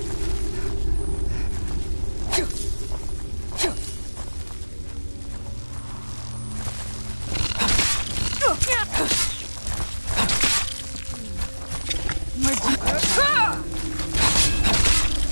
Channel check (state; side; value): inverted; both; correlation -1.00